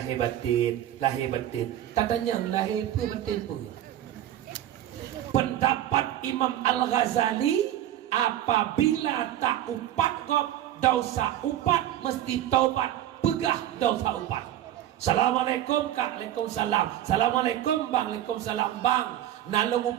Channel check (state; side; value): quieter; left; 12.4 dB